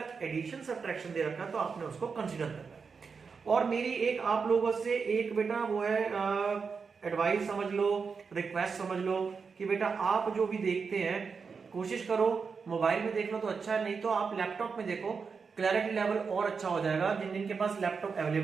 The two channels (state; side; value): quieter; left; 5.4 dB